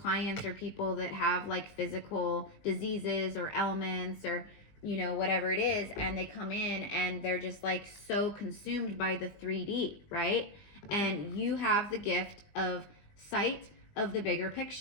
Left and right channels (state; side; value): late; right; 20 ms